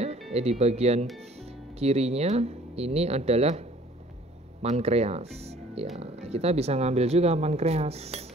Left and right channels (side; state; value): both; normal; correlation 0.54